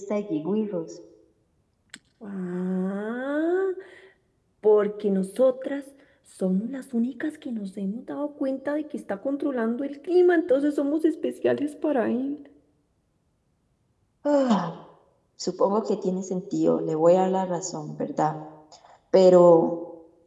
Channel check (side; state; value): both; identical; correlation 1.00